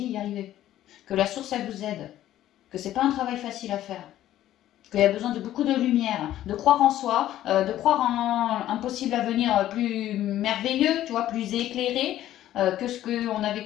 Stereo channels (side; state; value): right; quieter; 13.0 dB